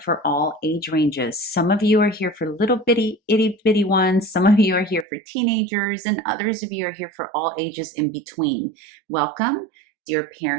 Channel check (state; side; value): drops out; left; at 5.1 s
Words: all age ranges. Some of you are here for little bitty, itty bitty ones. Some of you are here for teenagers, and others of you are here for all ages in between. Welcome, dear